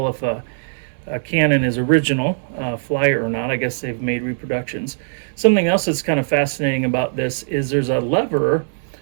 if a cannon is original, flyer or not. I guess they've made reproductions. Something else that's kind of fascinating about this is there's a lever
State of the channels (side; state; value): left; silent; digital silence